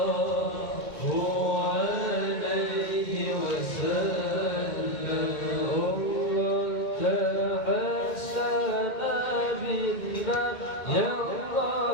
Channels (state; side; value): late; right; 2.1 ms